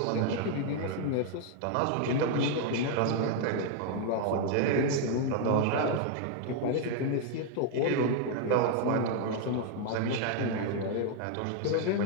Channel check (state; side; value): different; both; correlation 0.00